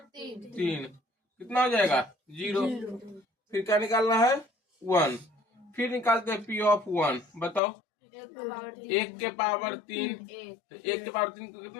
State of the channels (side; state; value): right; drops out; at 7.6 s